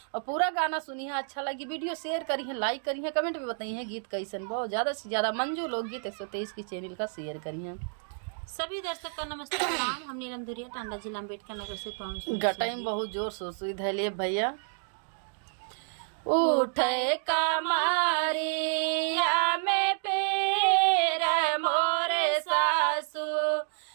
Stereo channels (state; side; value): silent; left; digital silence